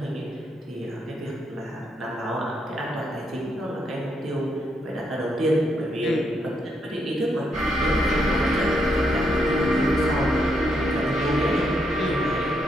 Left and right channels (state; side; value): normal; both; correlation 0.77